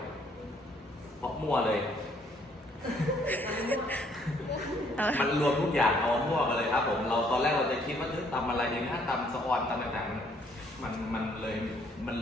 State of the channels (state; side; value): normal; both; correlation 0.65